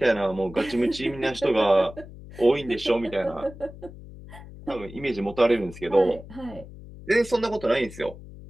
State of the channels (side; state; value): left; noise; hum, 16 dB below the sound